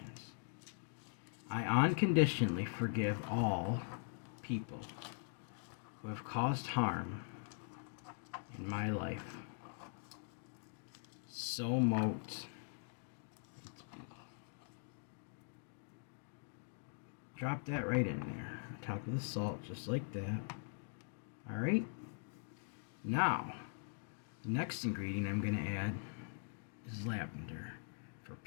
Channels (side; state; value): right; silent; digital silence